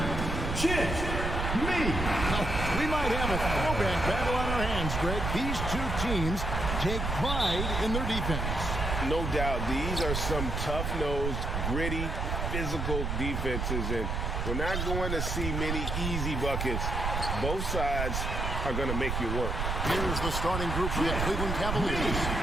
Chit Me. Now, we might have a throwback battle on our hands, Greg. These two teams take pride in their defense. No doubt, these are some tough-nosed, gritty, physical defenses, and we're not going to see many easy buckets. Both sides are going to make you work. Here's the starting group for the Cleveland Cavaliers.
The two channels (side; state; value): right; noise; rumble, 2 dB below the sound